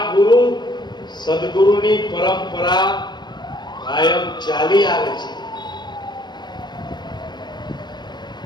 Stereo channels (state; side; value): late; right; 0.21 ms